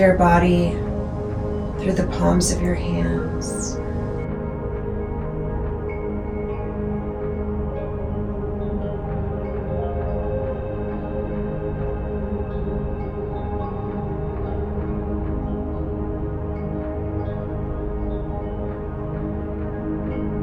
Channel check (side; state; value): both; identical; correlation 1.00